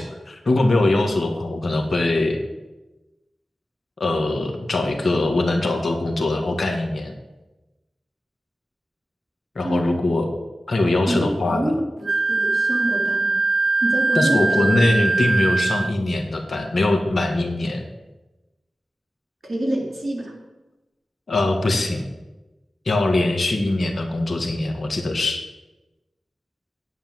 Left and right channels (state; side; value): normal; both; correlation 0.93